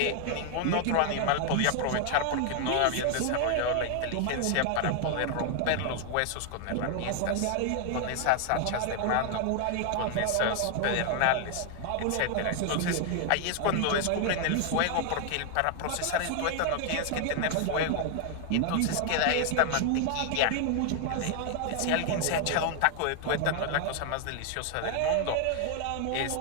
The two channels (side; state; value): both; different; correlation 0.00